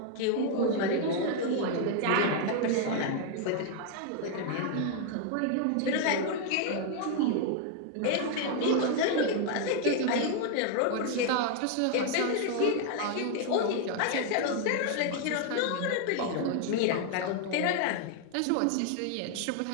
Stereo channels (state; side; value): different; both; correlation 0.00